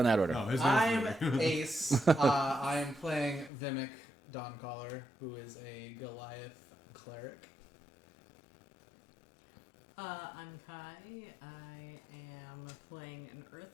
that order. No, his I'm name's Ace. I am playing Vimic Dawncaller, who is a Goliath cleric. I'm Kai. I am playing an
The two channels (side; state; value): right; drops out; at 3.5 s